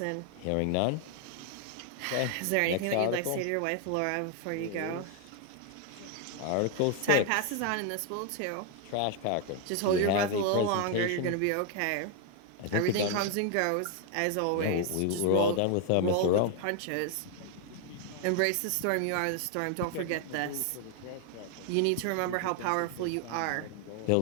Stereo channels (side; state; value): both; different; correlation 0.00